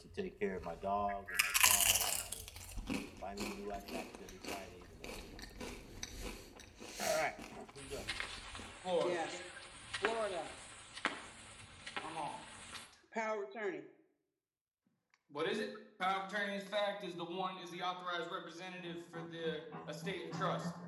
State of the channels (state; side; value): identical; both; correlation 1.00